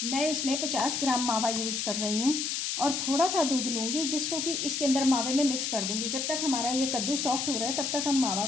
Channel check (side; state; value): left; noise; hiss, 1 dB below the sound